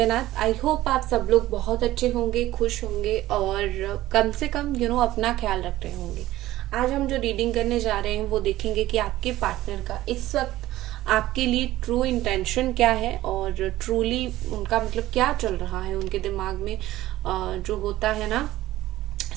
I hope आप सब लोग बहुत अच्छे होंगे, खुश होंगे और कम से कम अपना ख्याल रख रहे होंगे। आज हम जो रीडिंग करने जा रहे हैं वो देखेंगे कि आपके पार्टनर का इस वक्त आपके लिए ट्रू इंटेंशन क्या है और ट्रूली उनका मतलब क्या चल रहा है उनके दिमाग में। जो होता है ना,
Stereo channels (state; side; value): quieter; left; 15.6 dB